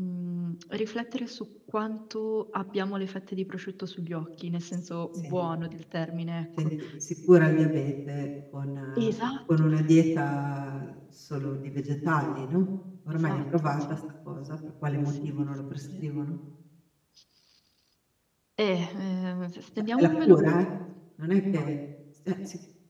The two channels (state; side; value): identical; both; correlation 1.00